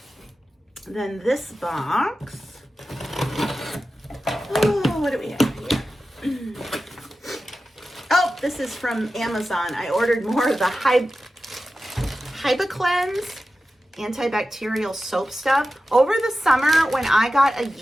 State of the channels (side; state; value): both; normal; correlation 0.93